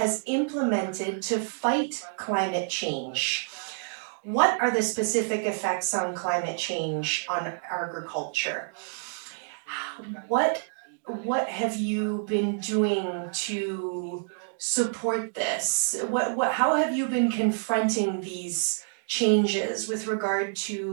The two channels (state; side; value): silent; left; digital silence